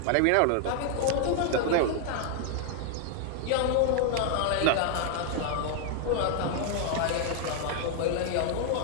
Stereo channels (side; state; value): both; different; correlation 0.00